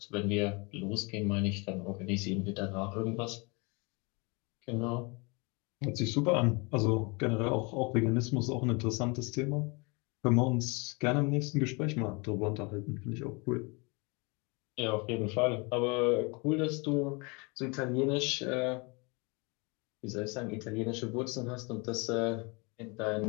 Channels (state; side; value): quieter; right; 29.3 dB